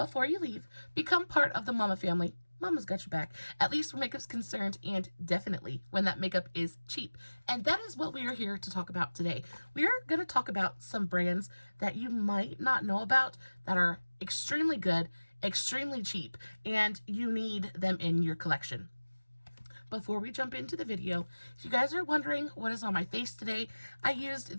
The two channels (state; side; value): inverted; both; correlation -1.00